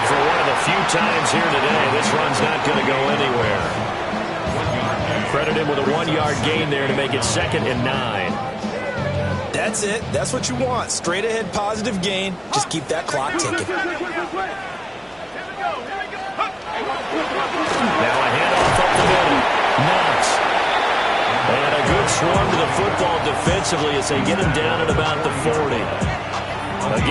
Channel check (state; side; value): identical; both; correlation 1.00